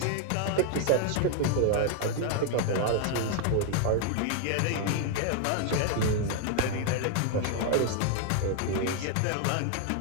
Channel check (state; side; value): different; both; correlation 0.00